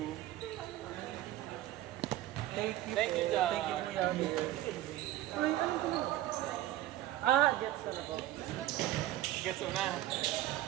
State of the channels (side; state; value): left; quieter; 14.3 dB